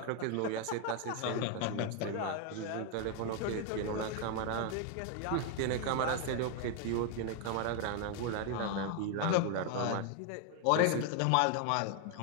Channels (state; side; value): different; both; correlation 0.01